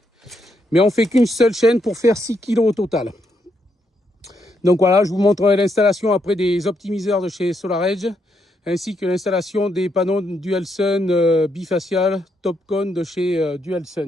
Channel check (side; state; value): both; normal; correlation 0.78